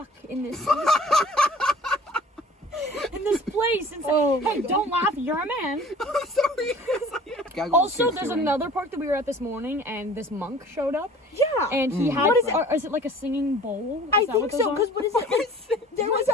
in this. in this place and say, Oh my hey, God. don't laugh, you're a man. I'm sorry. Gaggle was Also, too there's soon. another park that we were at this morning, and this monk showed up, Yeah. and he had, What is it? is it like a singing bowl? Is I that think what those so, are? because what is it? There was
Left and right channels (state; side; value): normal; both; correlation 0.47